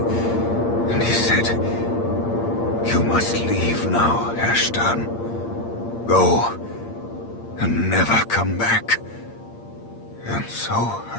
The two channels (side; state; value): right; late; 8.7 ms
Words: and he said, "You must leave now, Ashtan. Go, and never come back." And so